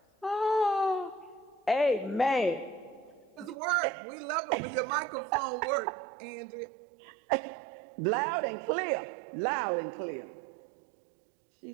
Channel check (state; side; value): drops out; left; at 3.6 s